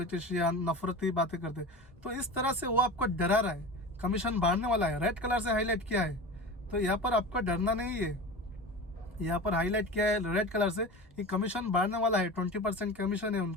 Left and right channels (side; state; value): both; normal; correlation 0.31